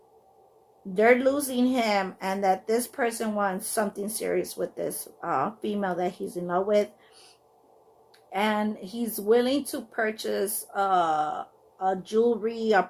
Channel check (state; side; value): identical; both; correlation 1.00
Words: they're losing him and that this person wants something serious with this female that he's in love with, and he's willing to purchase a jewelry, a